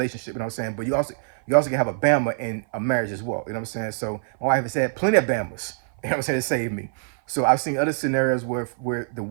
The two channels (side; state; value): left; silent; 55 dB below the other